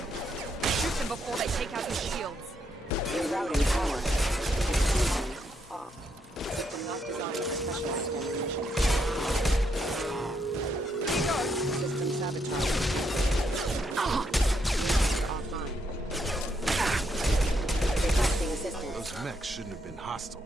Shoot them before they take out your shields. Rerouting power. Off. System not designed for specialized ammunition. System sabotage. Offline. Requesting assistance. Those mechs shouldn't have been hostile.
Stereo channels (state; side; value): normal; both; correlation 0.77